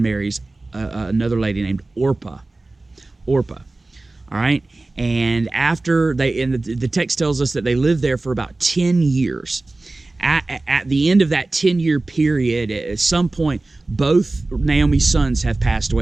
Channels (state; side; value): quieter; left; 3.1 dB